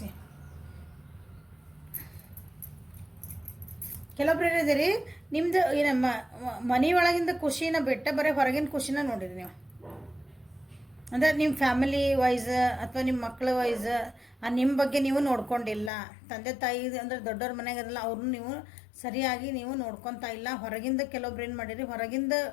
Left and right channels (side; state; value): right; drops out; at 15.9 s